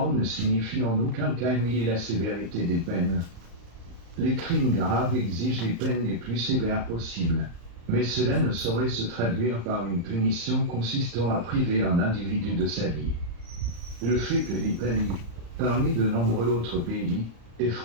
ne signifie en aucun cas nier la sévérité des peines. Les crimes graves exigent les peines les plus sévères possibles, mais cela ne saurait se traduire par une punition consistant à priver un individu de sa vie. Le fait que l'Italie, parmi de nombreux autres pays, ait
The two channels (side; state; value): left; late; 35 ms